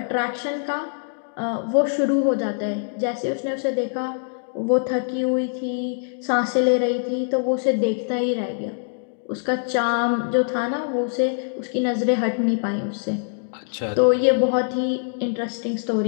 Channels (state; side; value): silent; right; digital silence